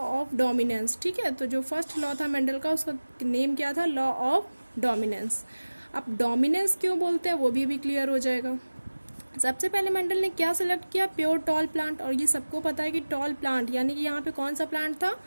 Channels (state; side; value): inverted; both; correlation -1.00